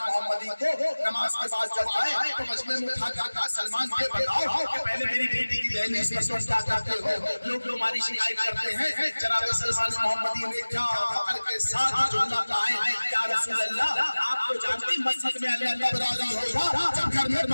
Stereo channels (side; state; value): both; inverted; correlation -1.00